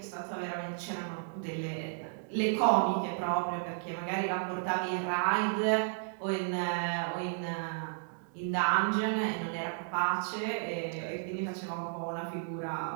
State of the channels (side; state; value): left; silent; digital silence